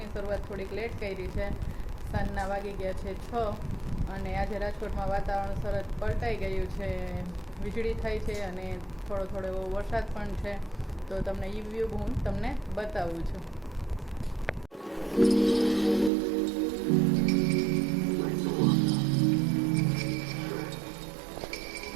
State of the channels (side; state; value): left; drops out; at 16.1 s